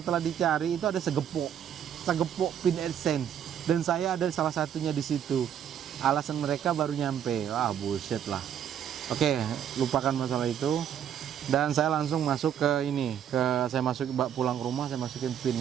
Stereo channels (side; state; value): left; quieter; 9.3 dB